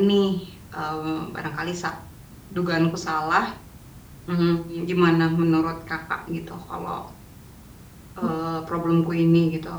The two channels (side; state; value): both; identical; correlation 1.00